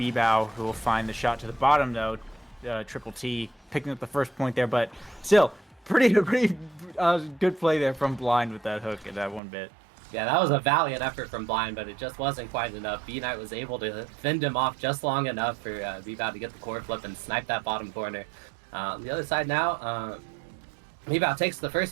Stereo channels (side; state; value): left; drops out; at 9.4 s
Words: who will find the shot to the bottom, though. Triple T picking up the first point there, but still pretty good play there from Blind with that hook and that one bit. Yeah, that was a valiant effort from Blind, but it just wasn't quite enough. B-Knight was able to fend him off just long enough for B-Bow to get the core flip and snipe that bottom corner. On the other side now, B-Bow takes the